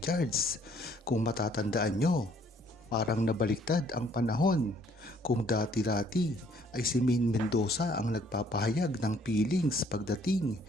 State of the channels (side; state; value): both; normal; correlation 0.62